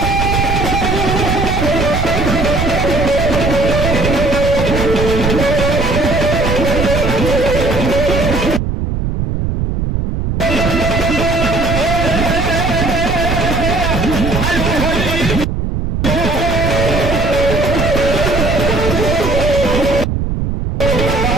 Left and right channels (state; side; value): noise; right; rumble, 1 dB below the sound